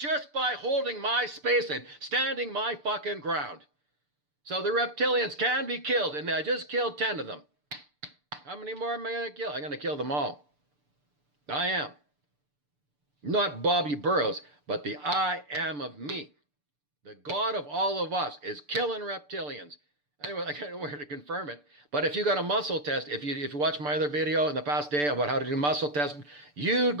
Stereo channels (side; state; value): left; late; 6.8 ms